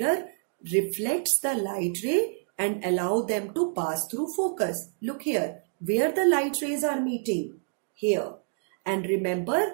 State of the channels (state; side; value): silent; left; digital silence